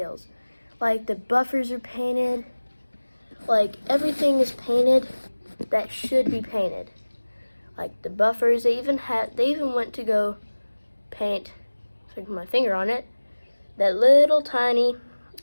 Like the buffers are painted, like everything is painted that should be painted. Like the buffers, they even went to go paint, if I can put my finger on it, that little tiny,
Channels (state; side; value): inverted; both; correlation -1.00